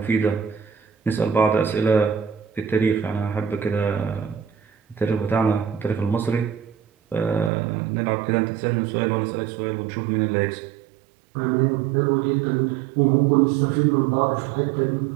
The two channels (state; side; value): drops out; left; at 7.5 s